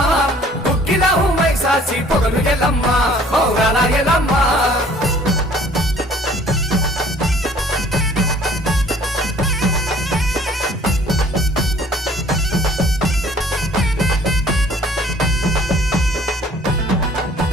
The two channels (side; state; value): both; normal; correlation 0.55